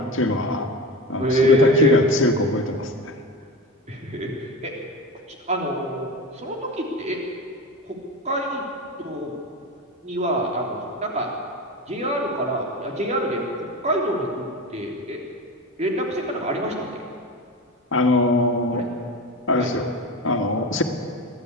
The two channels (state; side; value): normal; both; correlation 0.27